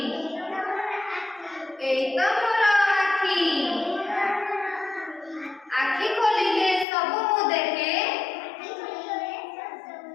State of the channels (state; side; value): drops out; right; at 6.9 s